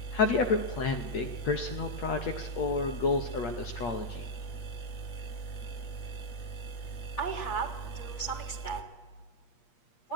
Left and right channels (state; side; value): late; right; 8.5 ms